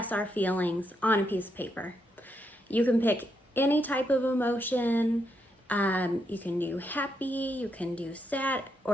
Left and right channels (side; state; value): both; normal; correlation 0.80